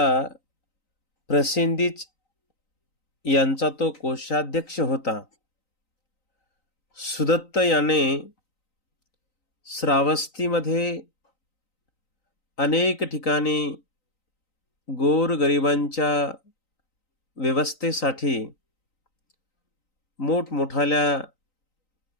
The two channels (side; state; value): right; late; 3.9 ms